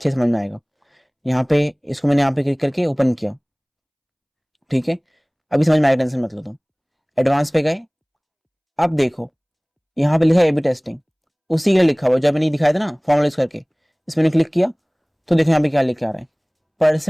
समझ में आएगा। यहाँ पे इसको मैंने यहाँ पे क्लिक करके ओपन किया, ठीक है, अभी समझ में आएगा, टेंशन मत लो तुम। एडवांस पे गए, अब देखो यहाँ पे लिखा है एबी टेस्टिंग, उसी के लिखा हुआ जो मैंने दिखाया था ना फॉर्मूला यूज करके, इसमें क्लिक किया तो देखो यहाँ पे क्या लिख के आ रहा है,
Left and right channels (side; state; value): both; identical; correlation 1.00